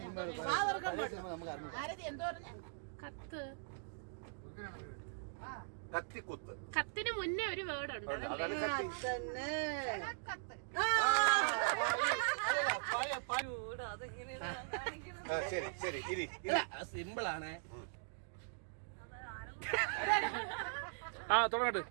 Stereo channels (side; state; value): left; silent; digital silence